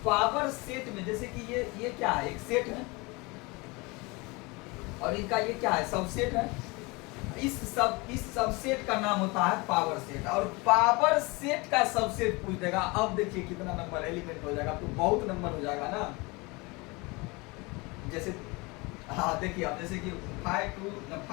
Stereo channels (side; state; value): right; quieter; 25.8 dB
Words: पावर सेट में जैसे कि ये क्या है, एक सेट है, और इनका ये क्या है, सबसेट है। इस सबसेट का नाम होता है पावर सेट। और पावर सेट का सबसेट पूछ देगा, अब देखिए कितना नंबर एलिमेंट हो जाएगा, तो बहुत नंबर हो जाएगा ना। जैसे हाँ देखिए, अब जैसे कि 5 2